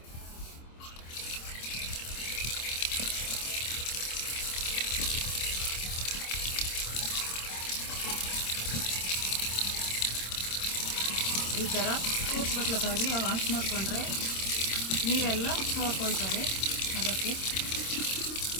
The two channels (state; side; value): late; right; 26 ms